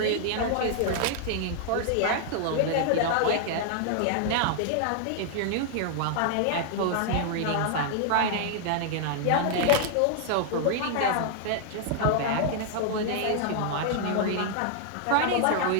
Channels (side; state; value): both; different; correlation 0.00